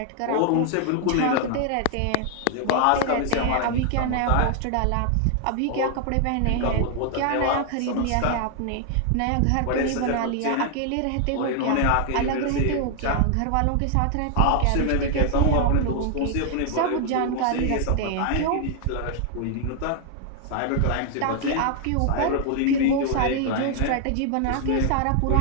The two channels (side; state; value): both; different; correlation 0.00